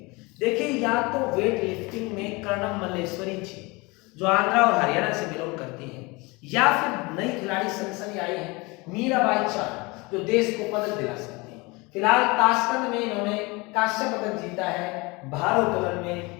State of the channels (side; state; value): right; quieter; 25.4 dB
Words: देखिए, या तो वेट लिफ्टिंग में कर्णम मल्लेश्वरी जी, जो आंध्रा और हरियाणा से बिलोंग करती है, या फिर नई खिलाड़ी सनसनी आई है मीराबाई चानू, जो देश को पदक दिला सकती है। फिलहाल ताशकंद में इन्होंने कांस्य पदक जीता है, भारोत्तोलन में,